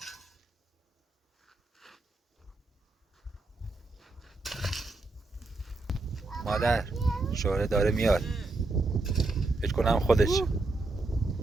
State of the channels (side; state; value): left; quieter; 3.3 dB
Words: مادر شوره داره میاد فکر کنم خودش